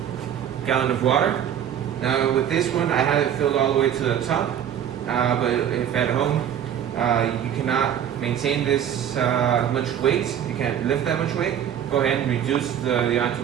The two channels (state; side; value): quieter; left; 9.6 dB